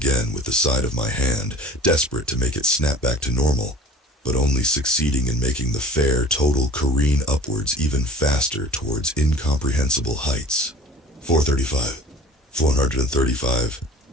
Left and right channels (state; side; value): normal; both; correlation 0.43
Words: with the side of my hand, desperate to make it snap back to normal, but only succeeding in making the fare total careen upwards even faster towards incomprehensible heights. 435, 435,